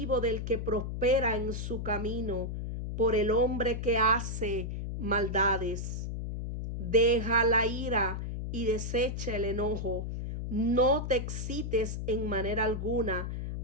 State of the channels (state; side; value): noise; left; hum, 4 dB below the sound